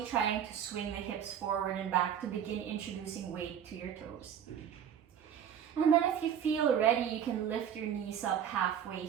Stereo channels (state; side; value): quieter; left; 8.9 dB